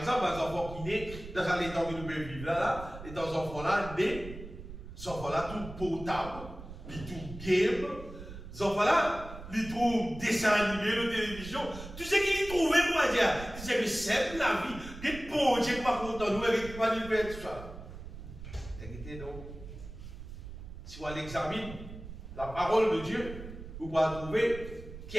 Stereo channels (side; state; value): right; noise; rumble, 12 dB below the sound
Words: les enfants qui naissent, dans les temps que nous pouvons vivre là, les enfants-là, nés, les enfants-là, tout potable, ils tout game, les enfants-là, ils trouvent dessin animé, la télévision, tout ce qu'ils trouvaient, pour dire, c'est que c'est la vie. Des bons Dieu qui va content nous, et qui va nous faire tout ça. Écoutez donc, si on l'examine, la parole de Dieu, vous pouvez trouver qui